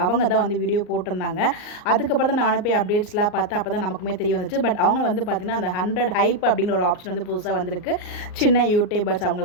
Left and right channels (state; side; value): late; right; 38 ms